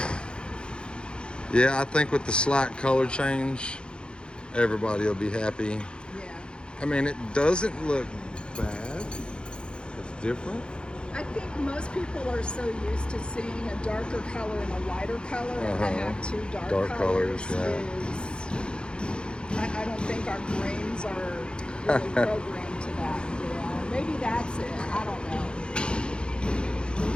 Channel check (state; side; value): late; right; 0.053 ms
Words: Yeah, I think with the slight color change, everybody will be happy. Yeah. I mean, it doesn't look bad. It's different. I think most people are so used to seeing a darker color and a lighter color, and to have two dark colors yeah. I don't think our brains are really programmed to that. You know? Maybe that's it. I don't know.